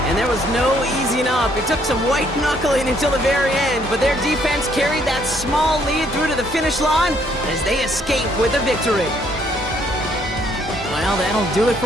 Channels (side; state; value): both; normal; correlation 0.67